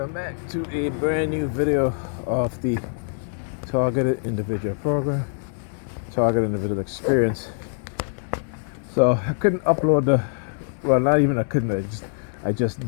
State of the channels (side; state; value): right; silent; digital silence